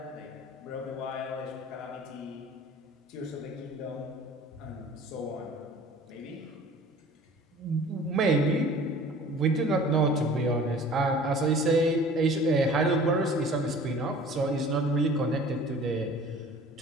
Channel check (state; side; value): normal; both; correlation 0.46